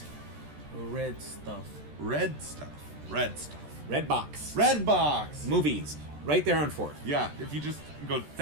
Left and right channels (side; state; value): left; late; 14 ms